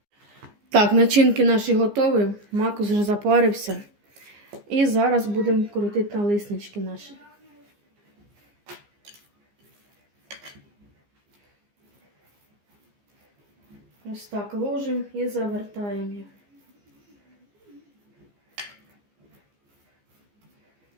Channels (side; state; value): left; late; 15 ms